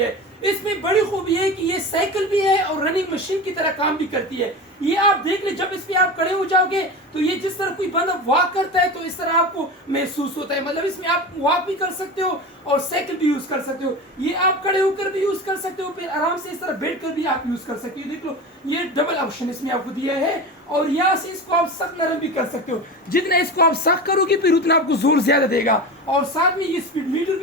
इसमें बड़ी खूबी है कि ये साइकिल भी है और रनिंग मशीन की तरह काम भी करती है। ये आप देख ले, जब इसमें आप खड़े हो जाओगे तो ये जिस तरह कोई बंदा वॉक करता है तो इस तरह आपको महसूस होता है। मतलब इसमें आप वॉक भी कर सकते हो और साइकिल भी यूज कर सकते हो। ये आप खड़े होकर भी यूज कर सकते हो, फिर आराम से इस तरह बैठ कर भी आप यूज कर सकते हो। देख लो, ये डबल ऑप्शन इसमें आपको दिया है और यहाँ से इसको आप सख्त नरम भी कर सकते हो। जितना इसको आप सख्त करोगे फिर उतना आपको जोर ज्यादा देगा। और साथ में ये स्पीड मीटर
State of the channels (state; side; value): normal; both; correlation 0.28